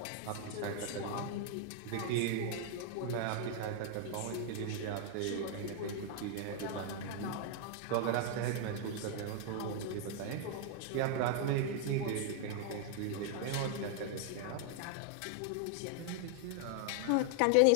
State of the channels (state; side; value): different; both; correlation 0.00